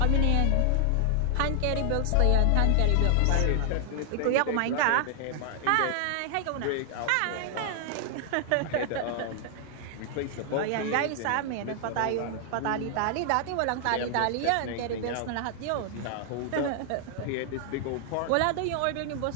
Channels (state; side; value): different; both; correlation 0.00